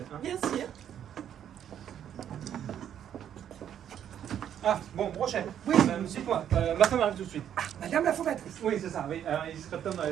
Hein. Bien sûr. Ah, bon, Brochet. Oui. Dites-moi, ma femme arrive tout de suite. Madame la fondatrice. Oui, c'est ça, oui. Alors, il serait temps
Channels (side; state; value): left; quieter; 9.7 dB